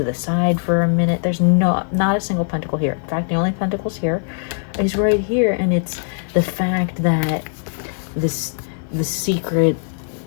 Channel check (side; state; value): right; silent; 65 dB below the other